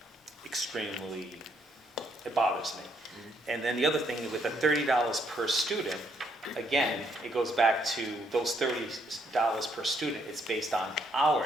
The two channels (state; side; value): normal; both; correlation 0.71